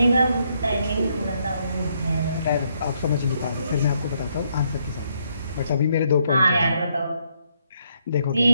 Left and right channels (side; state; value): both; inverted; correlation -0.73